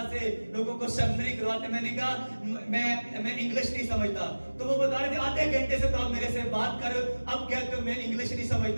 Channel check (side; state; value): both; inverted; correlation -1.00